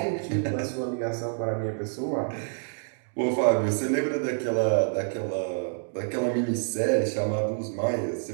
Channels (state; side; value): silent; left; digital silence